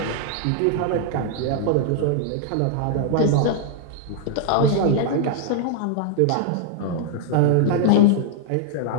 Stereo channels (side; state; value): both; different; correlation 0.00